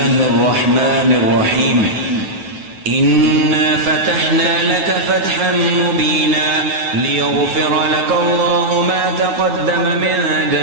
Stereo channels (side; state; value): left; late; 9.3 ms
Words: الرحمن الرحيم. إنا فتحنا لك فتحا مبينا ليغفر لك الله ما تقدم من